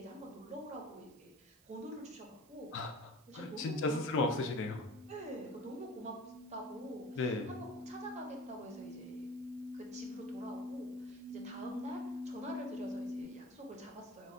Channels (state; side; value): noise; right; hiss, 26 dB below the sound